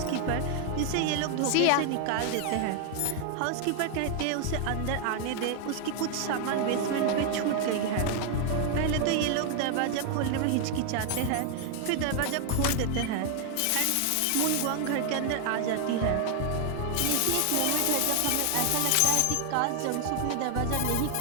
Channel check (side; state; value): both; different; correlation 0.00